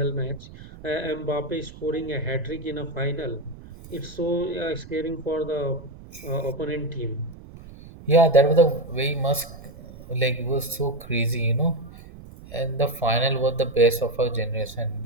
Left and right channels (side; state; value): right; noise; rumble, 17 dB below the sound